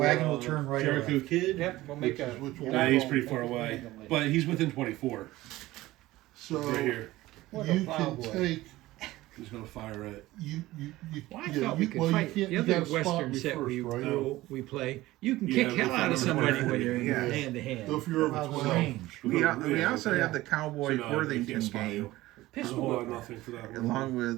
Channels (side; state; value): left; quieter; 17.4 dB